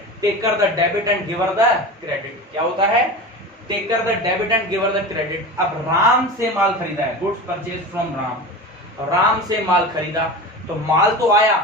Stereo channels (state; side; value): normal; both; correlation 0.29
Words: Taker the debit and giver the credit. क्या होता है? Taker the debit and giver the credit. अब राम से माल खरीदा है, goods purchase from Ram, Ram से माल खरीदा तो माल तो आया